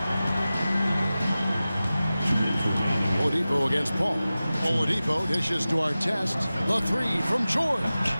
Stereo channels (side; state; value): both; inverted; correlation -0.96